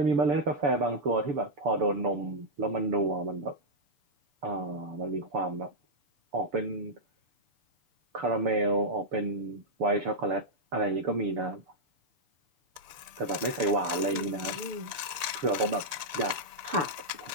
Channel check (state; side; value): late; left; 6.9 ms